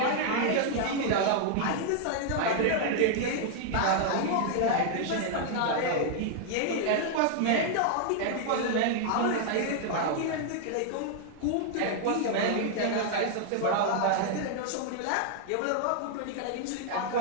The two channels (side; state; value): both; different; correlation -0.01